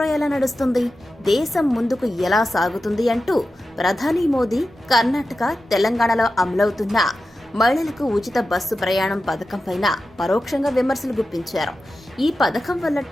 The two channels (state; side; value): normal; both; correlation 0.92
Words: ఎలా నడుస్తుంది, దేశం ముందుకు ఎలా సాగుతుంది అంటూ ప్రధాని మోదీ కర్ణాటక, తెలంగాణలో అమలవుతున్న మహిళలకు ఉచిత బస్సు ప్రయాణం పథకం పైన పరోక్షంగా విమర్శలు గుప్పించారు. ఈ పథకం వల్ల